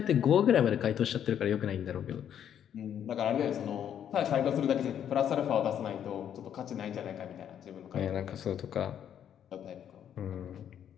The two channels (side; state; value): right; quieter; 9.4 dB